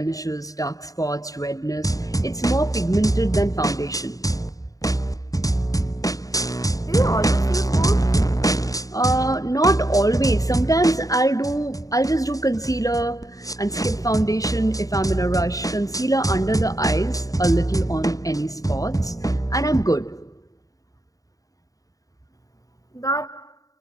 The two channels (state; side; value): late; right; 0.17 ms